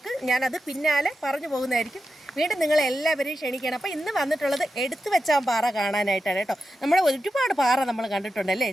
ഞാനത് പിന്നാലെ പറഞ്ഞു പോകുന്നതായിരിക്കും. വീണ്ടും നിങ്ങളെല്ലാവരെയും ക്ഷണിക്കണം. അപ്പോൾ ഇന്ന് വന്നിട്ടുള്ളത് എടുത്തു വെച്ചാൽ പാറ കാണാനായിട്ടാണ് കേട്ടോ. നമ്മുടെ ഒരുപാട് പാറ നമ്മൾ കണ്ടിട്ടുണ്ടല്ലേ,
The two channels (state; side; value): normal; both; correlation 0.90